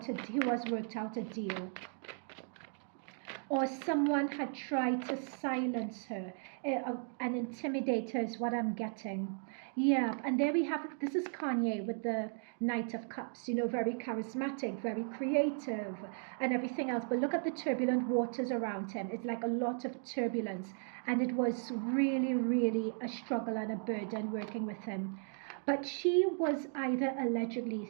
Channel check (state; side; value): silent; left; 54 dB below the other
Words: has worked out a deal. Or someone had tried to silence her and intimidate her is what I'm getting. Yeah, and there we have, this is Kanye with the Knight of Cups, you know, very charismatic, very creative and everything else. But look at the turbulent waters around him. It's like a lot of turbulence. And it was really, really a struggle and a burden working with him. But she was either allegedly